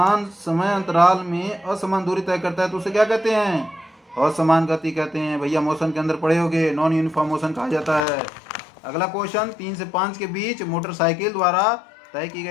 समय अंतराल में असमान दूरी तय करता है तो उसे क्या कहते हैं? असमान गति कहते हैं। भैया मोशन के अंदर पढ़े होगे, नॉन यूनिफॉर्म मोशन कहा जाता है। अगला क्वेश्चन, 3 से 5 के बीच मोटरसाइकिल द्वारा तय की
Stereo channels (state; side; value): drops out; right; at 8.1 s